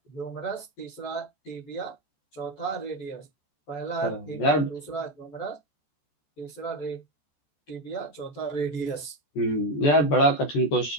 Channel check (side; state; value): right; late; 14 ms